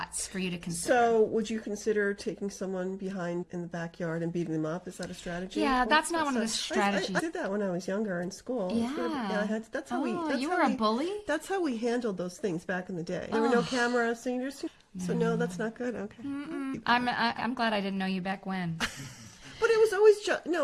for you to consider. So, would you consider taking someone behind in the backyard and beating them up? Is that a strategy? Yeah, that's not one of the strategies. I did that when I was younger in school. Yeah. I had. That's how we. That's you how were a we, bully? That's how we handled those things back in the day. There were no cameras, so you just. So no, that's not good. Okay. I'm glad I didn't know you back when. But it was always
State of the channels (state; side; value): identical; both; correlation 1.00